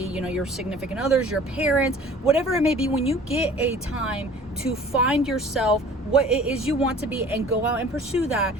significant others, your parents, whatever it may be. When you get a time to find yourself, what it is you want to be, and go out and pursue that,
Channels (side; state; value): both; normal; correlation 0.48